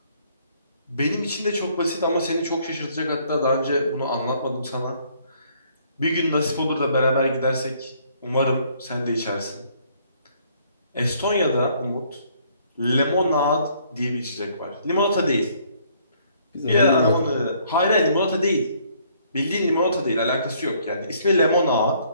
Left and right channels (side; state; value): both; inverted; correlation -0.64